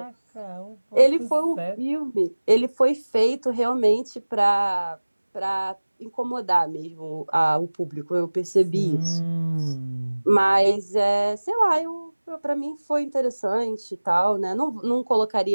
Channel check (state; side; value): inverted; both; correlation -1.00